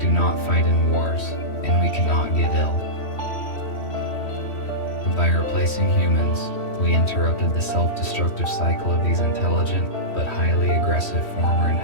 not fight in wars, and we cannot get ill. By replacing humans, we interrupted the self-destructive cycle of these intelligent but highly aggressive former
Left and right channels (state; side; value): late; right; 3.1 ms